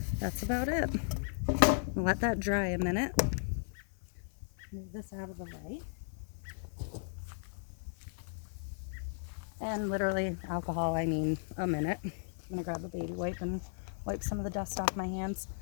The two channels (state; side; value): silent; right; 54 dB below the other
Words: that's about it. I'll let that dry a minute. Move this out of the way. And literally alcohol, I mean a minute. I'm gonna grab a baby wipe and wipe some of the dust off my hands.